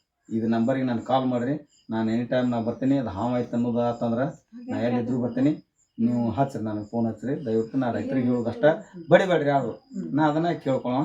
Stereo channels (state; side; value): identical; both; correlation 1.00